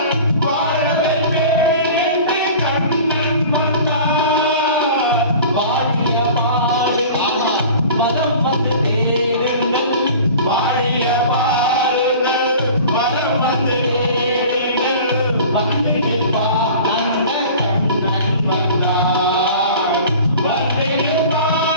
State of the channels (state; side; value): inverted; both; correlation -0.41